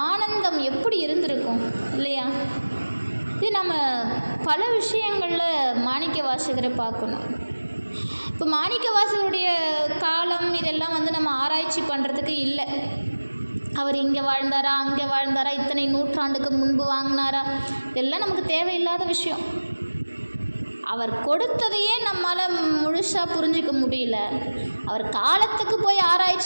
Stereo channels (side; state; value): both; inverted; correlation -1.00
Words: ஆனந்தம் எப்படி இருந்திருக்கும் இல்லையா? இது நம்ம பல விஷயங்களில் மாணிக்க வாசகரை பார்க்கணும். இப்போ மாணிக்க வாசகருடைய காலம் இதெல்லாம் நம்ம ஆராய்ச்சி பண்ணுறதுக்கு இல்லை. அவர் இங்கே வாழ்ந்தாரா, அங்கே வாழ்ந்தாரா, இத்தனை நூற்றாண்டுக்கு முன்பு வாங்கினாரா, இதெல்லாம் நமக்கு தேவையில்லாத விஷயம். அவர் கொடுத்ததையே நம்மளால் முழுசாக புரிஞ்சிக்க முடியல. அவர் காலத்துக்கு போய்